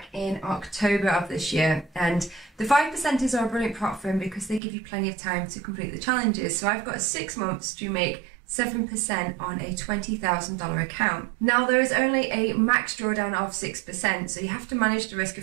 in October of this year, and the 5%ers are a brilliant platform because they give you plenty of time to complete the challenges. So I've got 6 months to make 7% on a $20,000 account. Now there is only a max drawdown of 6%, so you have to manage the risk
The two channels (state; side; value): drops out; left; at 4.6 s